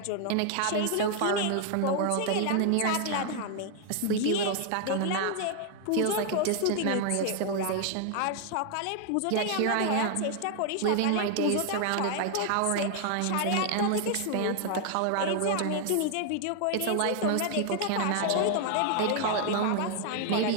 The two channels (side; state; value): both; different; correlation 0.00